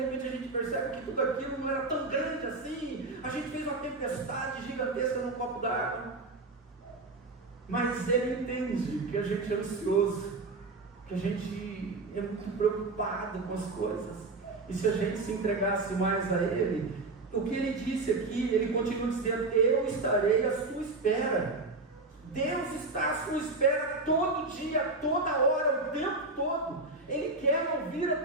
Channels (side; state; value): left; quieter; 3.4 dB